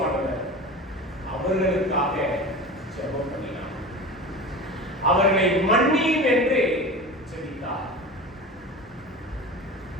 அவர்களுக்காக ஜெபம் பண்ணினார். அவர்களை மன்னியும் என்று ஜெபித்தார்.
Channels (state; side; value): normal; both; correlation 0.32